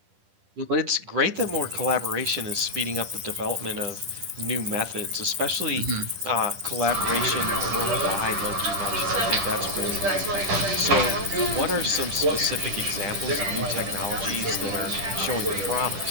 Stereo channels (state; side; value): late; left; 10 ms